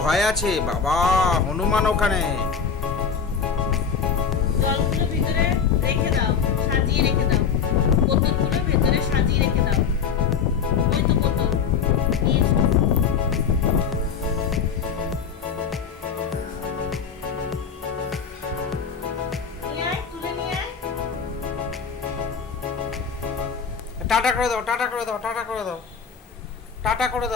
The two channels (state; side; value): quieter; right; 6.5 dB